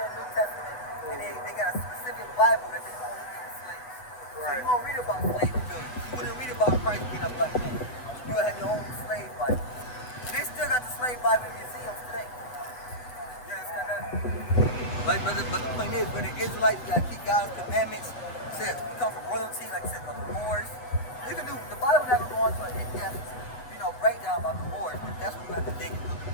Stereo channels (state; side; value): late; right; 8.3 ms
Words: the New Testament, and they got a specific Bible that they only read in slaves. So you won't read about slave rebellion. You wouldn't read about Christ being a black man. You would have your own slave Bible. And they still got the slave Bible in museums today. You understand that? Like, brother, but the point is, when the Israelites got to keep God's commandments, said we come from royalty, like I said, the Moors. You can do the Bible never go into an in-depth, breakdown about the Moors, but that's when you have to dig into the